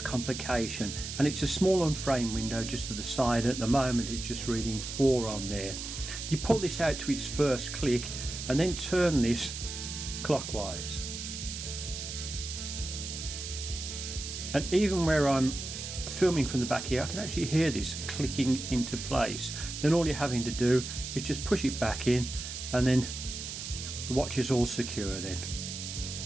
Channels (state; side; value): noise; right; hiss, 7 dB below the sound